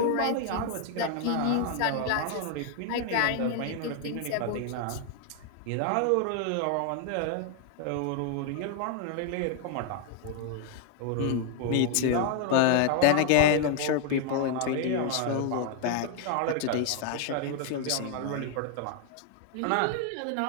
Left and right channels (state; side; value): different; both; correlation 0.00